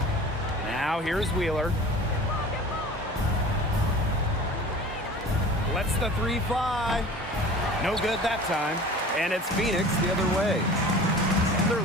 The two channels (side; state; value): both; normal; correlation 0.41